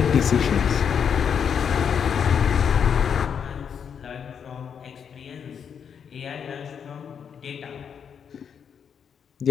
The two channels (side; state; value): right; quieter; 7.4 dB